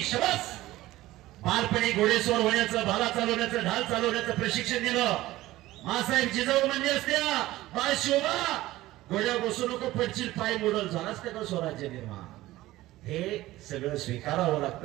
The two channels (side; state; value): left; quieter; 16.8 dB